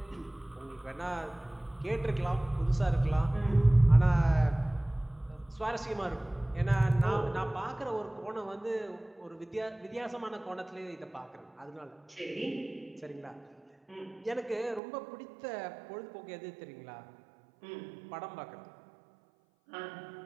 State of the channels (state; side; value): drops out; left; at 14.8 s